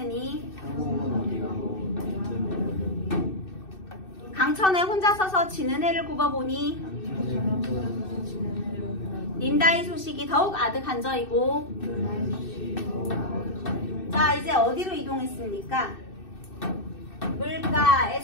강천에 혼자 서서 지는 해를 굽어보니 님다의 소식이 더욱 아득한저이고. 자, 이제 어디로 이동했습니까?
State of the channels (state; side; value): late; right; 2.6 ms